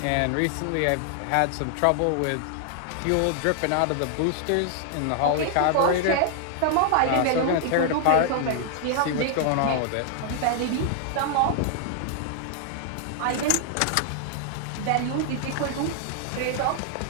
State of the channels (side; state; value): both; different; correlation 0.00